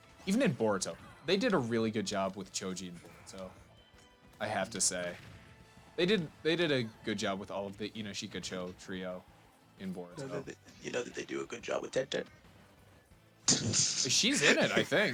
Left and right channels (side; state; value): both; identical; correlation 1.00